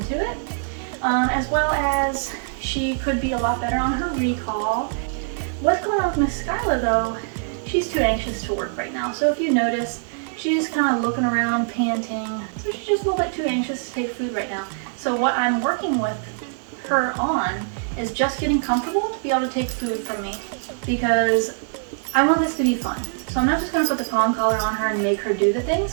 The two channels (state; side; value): silent; left; digital silence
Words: it. As well as she could be a lot better on her recall. What's going on with Miss Skylah though, she's too anxious to work right now. So if you notice, she's kind of looking around, panting. So she's just a little bit too anxious to take food right now. So what I'm working with her on is just getting comfortable to be able to take food from me, because I want this to be fun. So I'm not just going to put the prong collar on her and make her do the things,